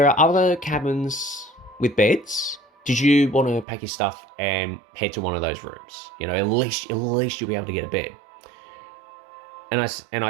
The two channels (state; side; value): drops out; left; at 3.7 s